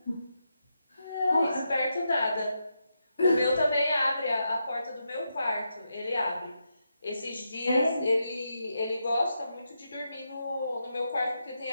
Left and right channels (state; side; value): inverted; both; correlation -0.85